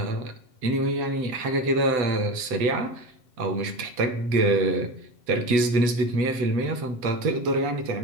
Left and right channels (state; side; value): late; left; 7.8 ms